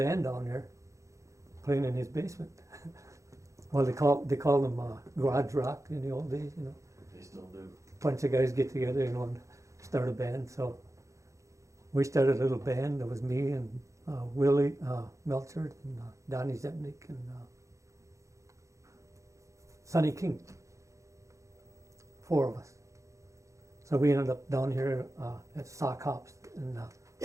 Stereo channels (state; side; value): late; left; 0.15 ms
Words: down there playing in his basement. Well, they called them garage rock in the old days, you know. They still do. Bunch of guys get together, you know, and start a band. So we started a little band. It was me and Willie Melcher and Donnie Zepnik and Sonny King. 4 of us. So we ended up down here at Sock Hops and